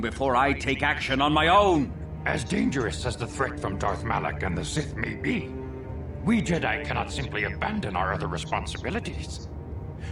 before I take action on my own. As dangerous as the threat from Darth Malak and the Sith may be, we Jedi cannot simply abandon our other responsibilities.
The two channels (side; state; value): both; identical; correlation 1.00